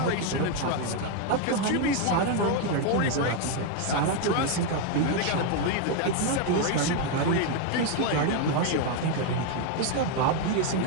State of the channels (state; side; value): different; both; correlation 0.01